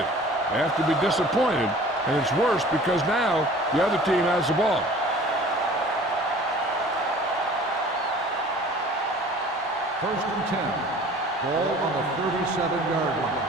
They have to be disappointed, and it's worse because now the other team has the ball. First and 10. Ball on the 37-yard line.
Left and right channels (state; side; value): normal; both; correlation 0.47